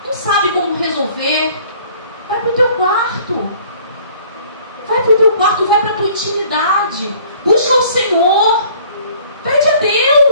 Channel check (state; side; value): inverted; both; correlation -0.54